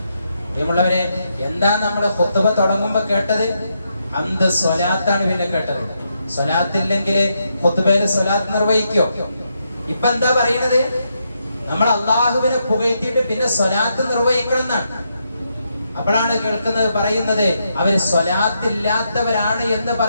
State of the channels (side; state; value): both; inverted; correlation -0.81